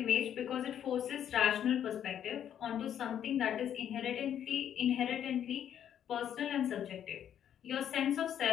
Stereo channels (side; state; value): right; quieter; 9.7 dB